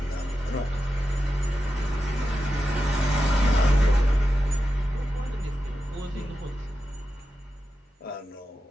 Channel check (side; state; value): both; normal; correlation 0.91